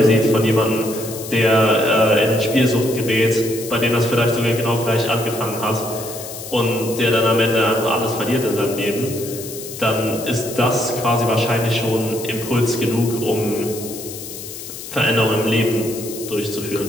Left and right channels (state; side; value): noise; left; hiss, 11 dB below the sound